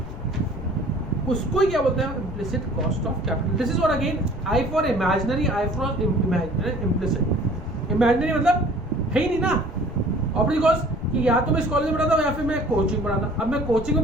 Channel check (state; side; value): normal; both; correlation 0.50